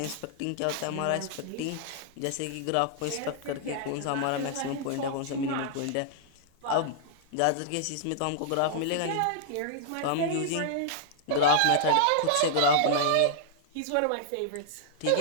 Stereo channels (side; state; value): both; different; correlation -0.01